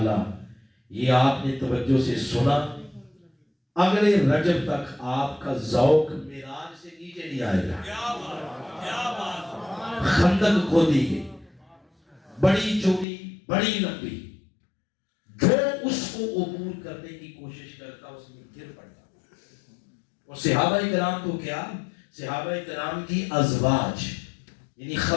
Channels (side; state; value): right; drops out; at 13.1 s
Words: یہ آپ نے توجہ سے سنا، اگلے رجب تک آپ کا ذوق معراج سے نیچے نہیں آئے گا. خندق کھودی گئی، بڑی چوڑی بڑی لمبی، جو اس کو عبور کرنے کی کوشش کرتا اس میں گر پڑتا. اور صحابہ کرام تو کیا، صحابہ کرام کی ازواج یعنی